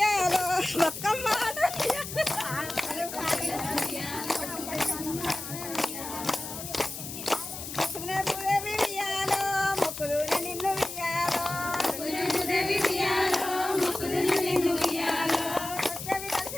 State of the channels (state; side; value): noise; left; hiss, 9 dB below the sound